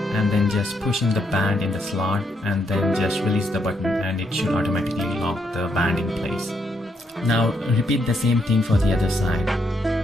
then just push in the band in the slot and then just release the button and it should automatically lock the band in place. Now repeat the same thing for the other side.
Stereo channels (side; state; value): both; normal; correlation 0.76